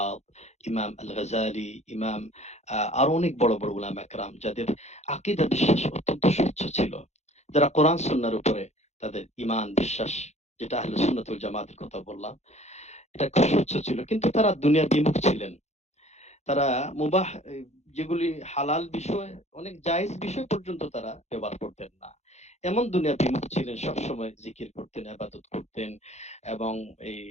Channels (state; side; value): late; right; 0.32 ms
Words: ইমাম আল গাজালি, ইমাম আরো অনেক বড় বড় উলামা একরাম যাদের আকীদা বিশ্বাস অত্যন্ত স্বচ্ছ ছিল, যারা কোরআন সুন্নাহর উপরে তাদের ঈমান বিশ্বাস, যেটা আহলে সুন্নাত ওয়াল জামাতের কথা বললাম, এটা খুব স্বচ্ছ ছিল। কিন্তু তারা দুনিয়া বিমুখ ছিলেন। তারা মুবাহ যেগুলি হালাল বিষয়, অনেক জায়েজ বিষয় পর্যন্ত তারা ব্যবহার করতেন না। এমন দুনিয়া বিমুখ ছিলেন, সবসময় জিকির করতেন, ইবাদত করতেন এবং এই